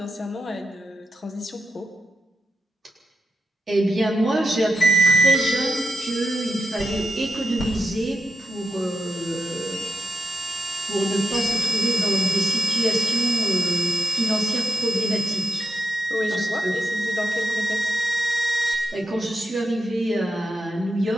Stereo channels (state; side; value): normal; both; correlation 0.86